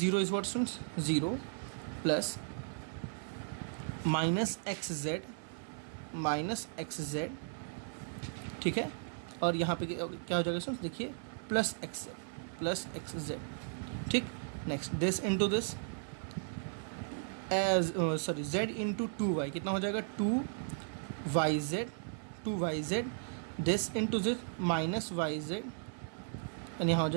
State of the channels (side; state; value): left; silent; 54 dB below the other